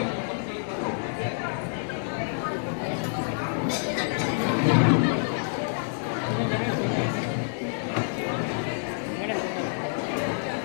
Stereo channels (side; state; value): right; silent; 60 dB below the other